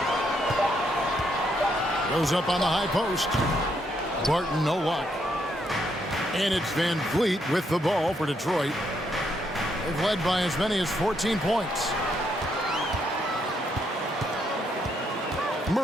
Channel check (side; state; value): both; normal; correlation 0.75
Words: Goes up on the high post. Barton, no luck. And it's Van Vliet with the ball for Detroit. They've led by as many as 14 points.